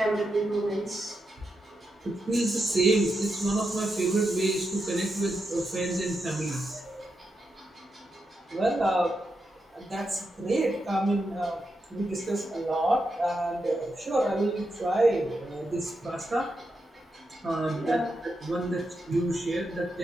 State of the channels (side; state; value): both; normal; correlation 0.85